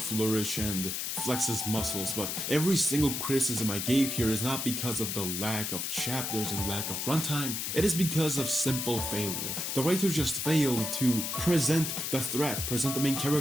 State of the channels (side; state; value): left; noise; hiss, 2 dB below the sound